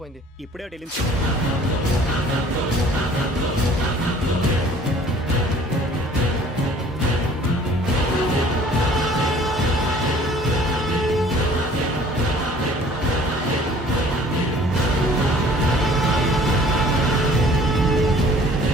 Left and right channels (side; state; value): both; normal; correlation 0.52